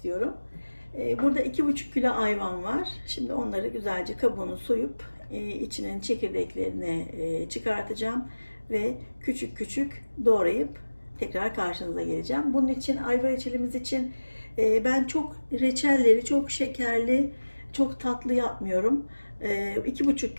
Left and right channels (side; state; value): both; inverted; correlation -1.00